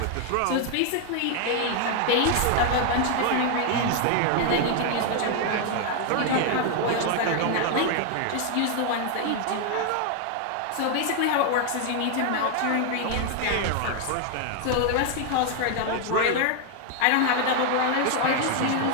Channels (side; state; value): both; different; correlation 0.00